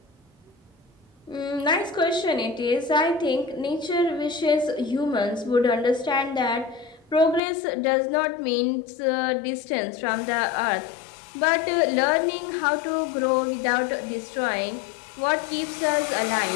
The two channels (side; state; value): right; drops out; at 7.4 s